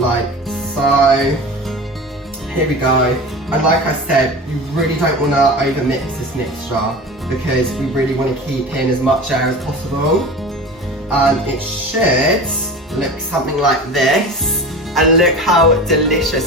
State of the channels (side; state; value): both; normal; correlation 0.33